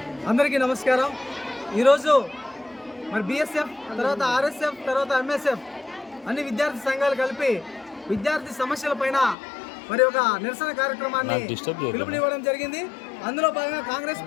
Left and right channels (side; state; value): right; drops out; at 9.3 s